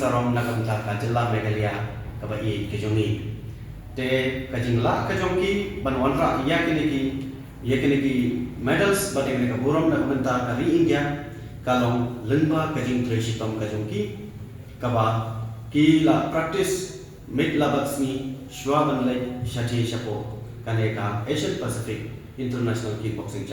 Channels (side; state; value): both; identical; correlation 1.00